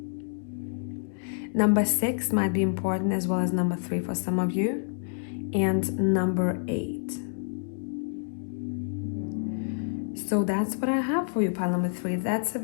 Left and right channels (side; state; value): right; silent; digital silence